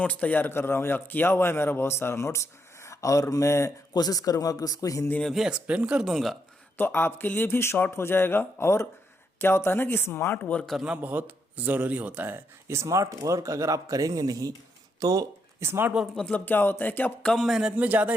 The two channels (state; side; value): normal; both; correlation 0.78